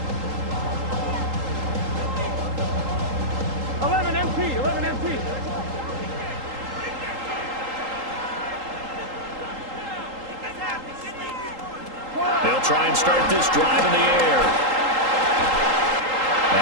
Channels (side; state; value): left; late; 3.8 ms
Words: 11 MT, 11 MT. They'll try and start this drive in the air.